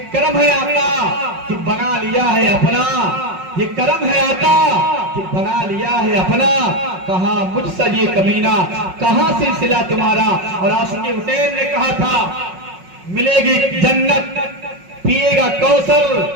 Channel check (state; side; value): late; left; 5.4 ms